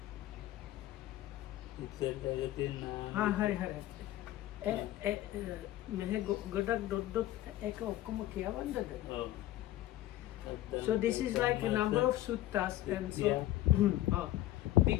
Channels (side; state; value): right; quieter; 14.8 dB